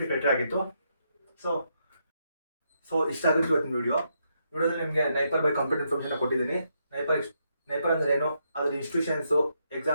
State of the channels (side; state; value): both; inverted; correlation -0.79